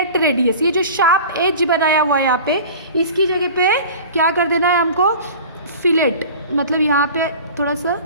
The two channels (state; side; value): inverted; both; correlation -0.39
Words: radius. ये जो शार्प एज बनाया हुआ है यहाँ पे, इसकी जगह पे क्या कर देना है हमको, फिलेट. मतलब यहाँ पे थोड़ा सा